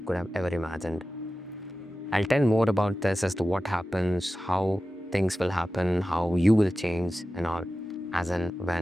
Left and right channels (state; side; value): normal; both; correlation 0.94